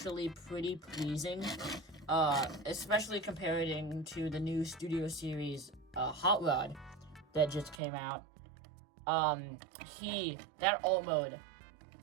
pretty pleasing, especially comparing to the new Studio Series Hot Rod that just came out. That alt mode,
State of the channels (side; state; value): left; drops out; at 7.8 s